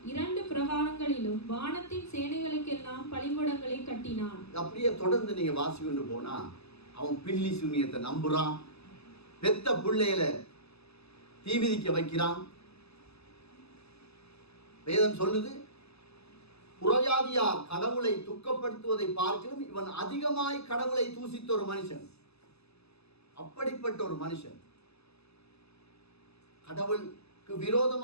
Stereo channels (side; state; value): right; late; 0.79 ms